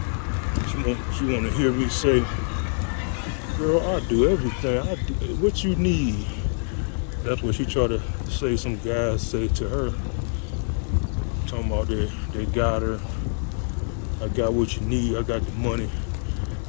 She want to hear me say, girl, I do everything. I do what you need. That's what she tried to say. Some guys say to her, talking about they got her. I got what you need. I got the money.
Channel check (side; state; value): right; silent; 62 dB below the other